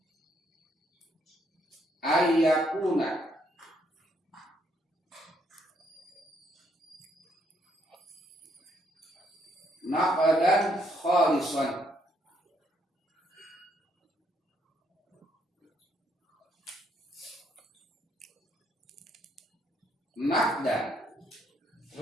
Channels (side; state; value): both; normal; correlation 0.71